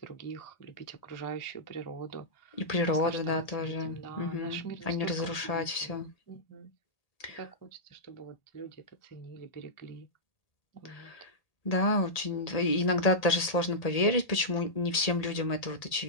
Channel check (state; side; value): late; right; 1.8 ms